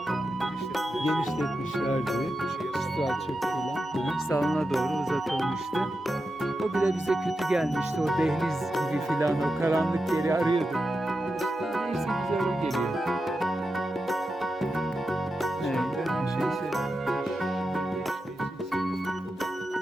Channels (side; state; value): both; normal; correlation 0.89